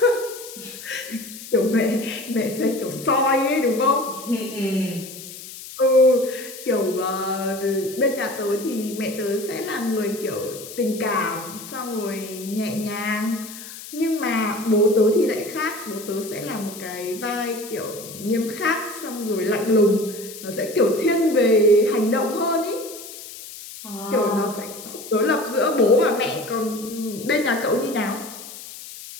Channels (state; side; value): noise; left; hiss, 13 dB below the sound